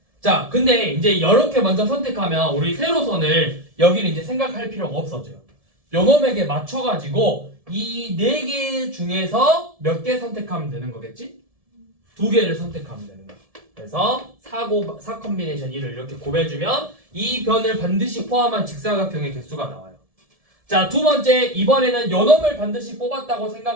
자, 근데 이제 이렇게 먼저 선택하면 우리 세로선을 여기는 이제 생각할 필요가 없어져요. 요놈에게 맞춰가지고 이 4개 중에서 몇 개 선택하면 되는 거겠지? 2개를 선택하면 되는 거야. 그래서 4 컴비네이션 1을 이렇게 곱해주면 이 변을 반드시 포함한 직사각형의 개수가 나와요. 자, 두 번째, 이번에는 요놈을 반드시 뽑았다고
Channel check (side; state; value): left; late; 1.7 ms